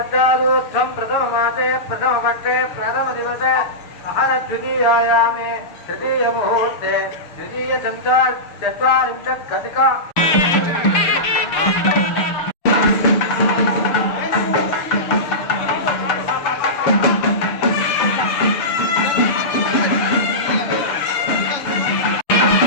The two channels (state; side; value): late; right; 6.7 ms